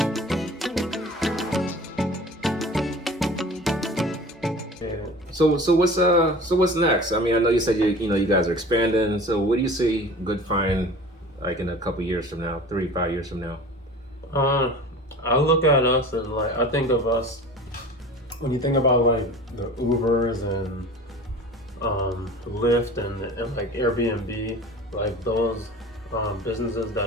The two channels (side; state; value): both; normal; correlation 0.40